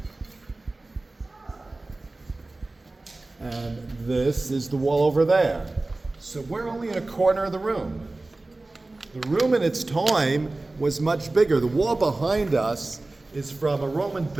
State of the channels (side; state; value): left; quieter; 3.0 dB